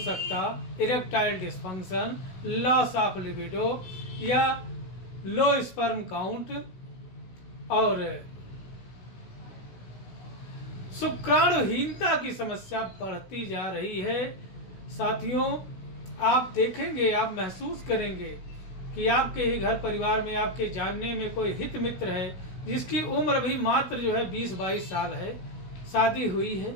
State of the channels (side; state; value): right; late; 16 ms